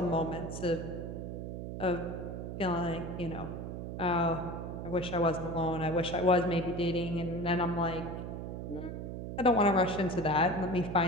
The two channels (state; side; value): noise; right; hum, 6 dB below the sound